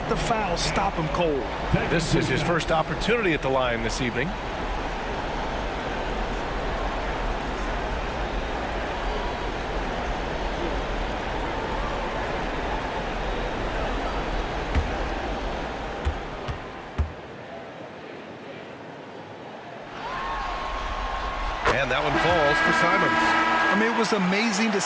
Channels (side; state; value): both; identical; correlation 1.00